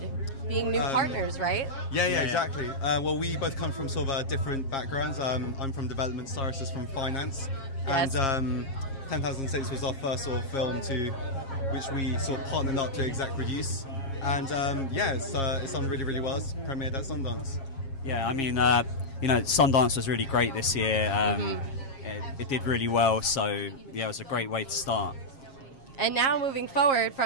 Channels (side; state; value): right; late; 7.4 ms